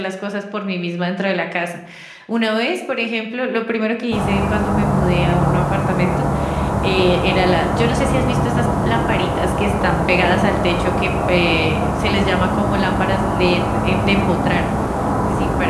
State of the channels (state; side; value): identical; both; correlation 1.00